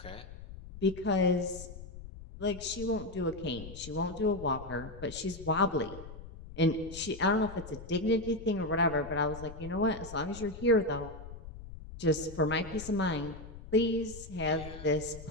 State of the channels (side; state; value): left; noise; rumble, 14 dB below the sound